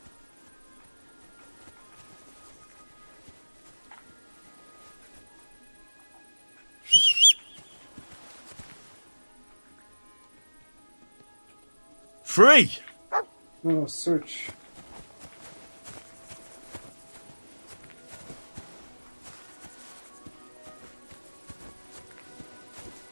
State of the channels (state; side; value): inverted; both; correlation -1.00